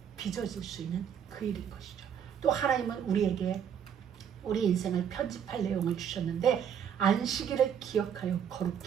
빚어질 수 있는 그 일인 것이죠. 또 하나님은 우리에게 우리 인생을 편집할 내용을 주셨는데, 안식일을 기억하여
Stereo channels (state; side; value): quieter; left; 8.3 dB